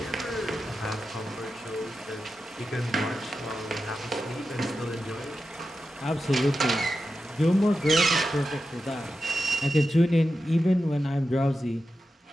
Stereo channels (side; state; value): both; normal; correlation 0.90